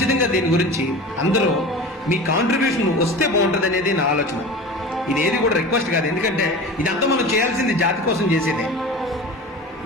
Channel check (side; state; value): both; normal; correlation 0.34